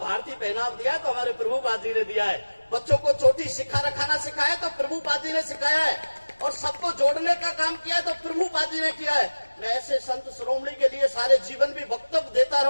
पहनाव दिया है तो हमारे प्रभुपाद जी ने दिया है। बच्चों को चोटी रखाना सिखाया तो प्रभुपाद जी ने सिखाया है। और सबको जोड़ने का काम किया है तो प्रभुपाद जी ने किया है। मैं ऐसे संत शिरोमणि के लिए सारे जीवन भी वक्तव्य देता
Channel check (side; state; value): both; inverted; correlation -1.00